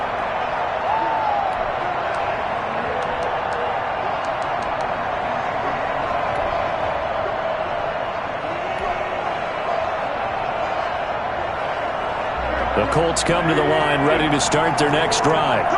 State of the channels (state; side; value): identical; both; correlation 1.00